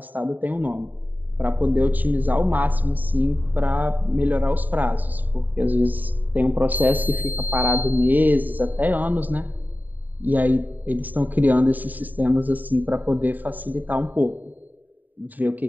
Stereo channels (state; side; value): late; left; 0.086 ms